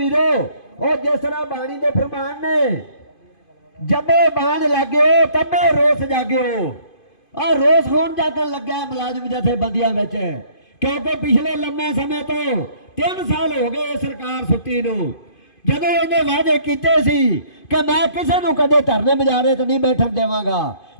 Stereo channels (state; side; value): late; right; 2.5 ms